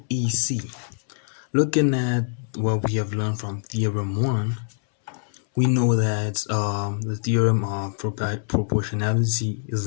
EC. Looking at what we have learned from Theorem 1, we know that the theorem of proportionality is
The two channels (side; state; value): right; silent; 62 dB below the other